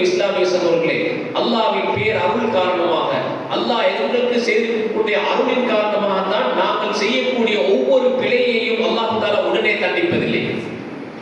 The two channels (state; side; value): identical; both; correlation 1.00